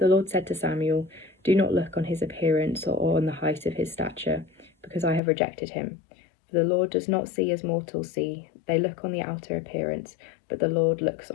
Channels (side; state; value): right; drops out; at 5.2 s